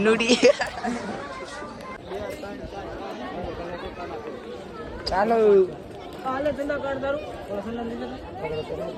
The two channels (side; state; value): both; identical; correlation 1.00